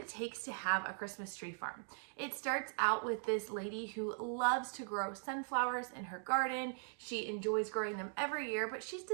takes to have a Christmas tree farm. It starts out with this lady who loves to grow sunflowers in her garden. She enjoys growing them every year, but she's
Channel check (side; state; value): left; silent; digital silence